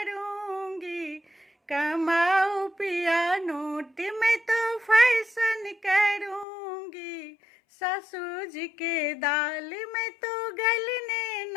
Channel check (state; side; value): drops out; right; at 6.5 s